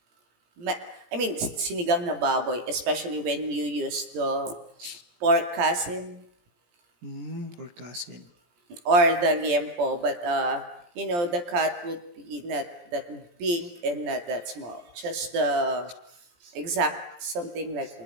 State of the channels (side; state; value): left; late; 17 ms